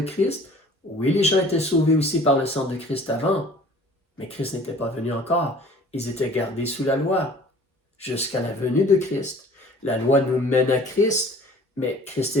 Christ. Oui, les gens étaient sauvés aussi par le sang de Christ avant, mais Christ n'était pas venu encore. Ils étaient gardés sous la loi jusqu'à la venue de Christ. La loi nous mène à Christ, mais Christ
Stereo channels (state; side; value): normal; both; correlation 0.49